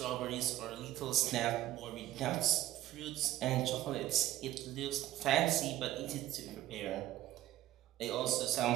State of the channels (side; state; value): left; quieter; 14.6 dB